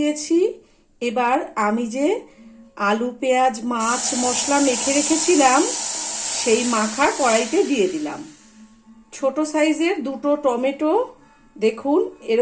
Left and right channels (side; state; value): both; identical; correlation 1.00